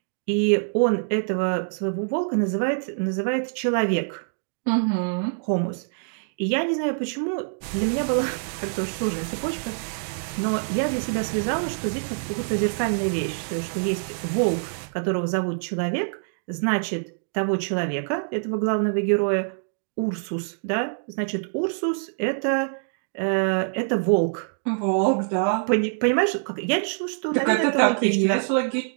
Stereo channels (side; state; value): left; silent; digital silence